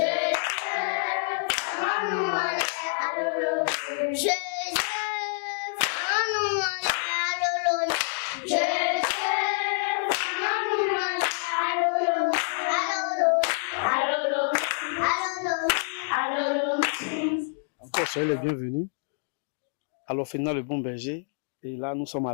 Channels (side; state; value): right; silent; digital silence